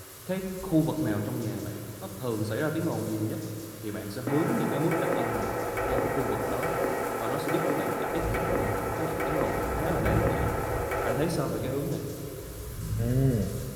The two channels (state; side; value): identical; both; correlation 1.00